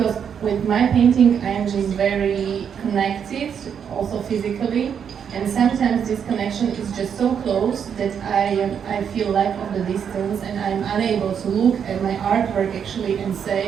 with my painting, I'm just very connected, also physically. And sometimes this connection is just so close that I feel lack of the distance, and I'm unable to look at my artwork actually and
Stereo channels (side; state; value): left; quieter; 7.7 dB